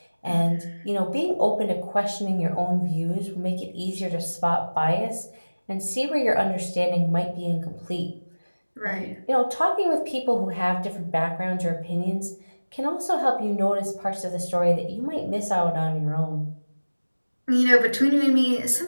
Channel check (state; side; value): inverted; both; correlation -1.00